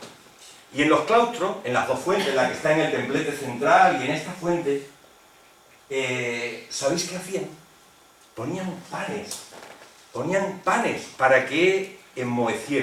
Y en los claustros, en las 2 fuentes, la que está en el templete central y en esta fuente, ¿sabéis qué hacían? Ponían panes para que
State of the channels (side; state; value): both; identical; correlation 1.00